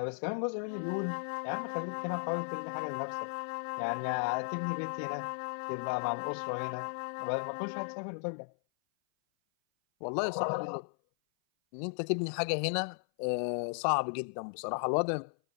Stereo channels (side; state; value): right; silent; 54 dB below the other